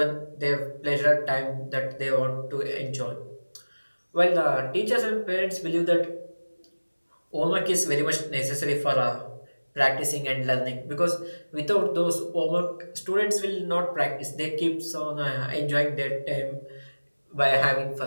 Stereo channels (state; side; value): inverted; both; correlation -1.00